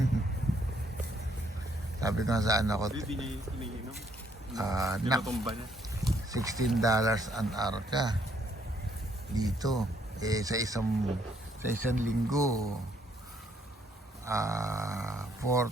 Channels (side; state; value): both; normal; correlation 0.68